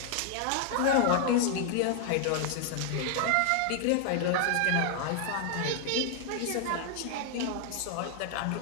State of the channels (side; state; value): both; different; correlation 0.00